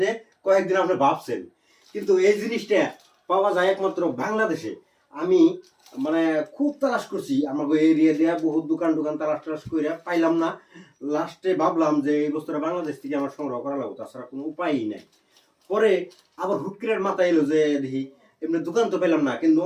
কয়েকদিন আপনি ভাবছেন, কিন্তু এই জিনিসটা পাওয়া যায় একমাত্র বাংলাদেশে। আমি মানে খুব তালাশ করছি আমাকে এরিয়া দিয়ে, বহুত দোকান তালাশ করে পাইলাম না। লাস্টে ভাবলাম যে এই বস্তুটা বাংলাদেশ থেকে আমার সংগ্রহ করা লাগবে, তাছাড়া কোনো উপায়ই নাই। পরে আবার হুট করে মাথায় এলো যে দেখি এমনি দোকান তো পেলাম না, কিন্তু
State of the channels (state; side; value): identical; both; correlation 1.00